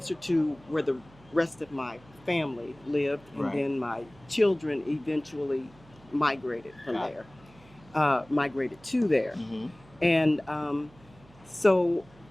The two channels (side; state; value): right; noise; hum, 25 dB below the sound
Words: to where the rest of my family lived, and then my children eventually migrated from there, migrated to there. And so